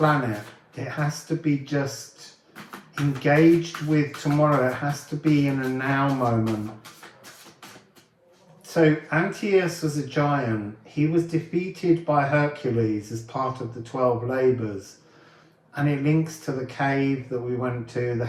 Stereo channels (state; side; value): identical; both; correlation 1.00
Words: it. It has to be just engaged with tomorrow. It has to be in a now moment. So Antaeus was a giant. He was defeated by Hercules as part of the 12 labours. And it links to the cave that we went to, the